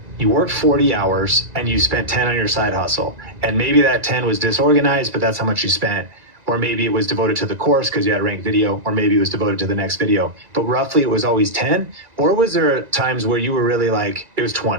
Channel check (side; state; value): left; late; 1.9 ms